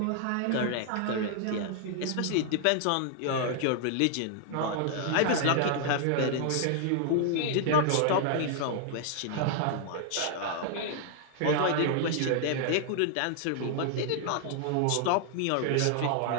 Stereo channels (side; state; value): both; different; correlation 0.00